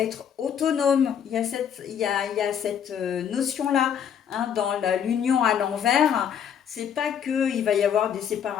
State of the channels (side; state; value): right; quieter; 8.4 dB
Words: autonome. Il y a cette notion-là, hein, dans l'union à l'envers. C'est pas que il va y avoir des